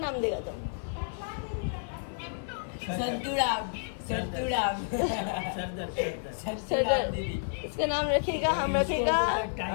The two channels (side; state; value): right; silent; 57 dB below the other